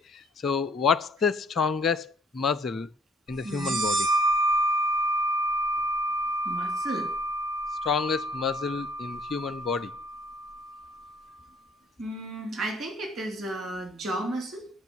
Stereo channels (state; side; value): normal; both; correlation 0.61